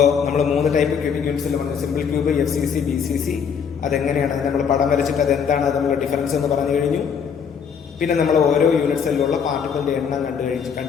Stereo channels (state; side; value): quieter; right; 6.9 dB